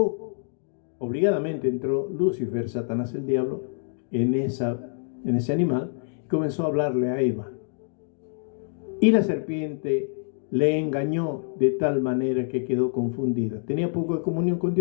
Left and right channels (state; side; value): silent; right; digital silence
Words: obligadamente entró Lucifer, Satanás el diablo, en ese animal y comenzó a hablarle a Eva. Y la serpiente le engañó de tal manera que quedó confundida. Tenía poco de comunión con